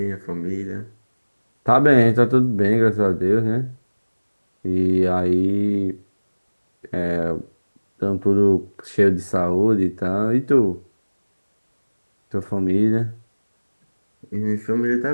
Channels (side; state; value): both; inverted; correlation -1.00